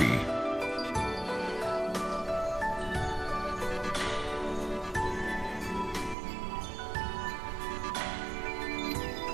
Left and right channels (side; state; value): left; drops out; at 6.2 s